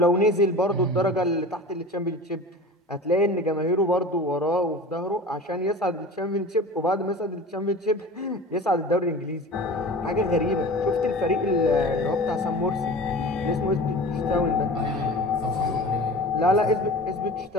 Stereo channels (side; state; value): both; normal; correlation 0.37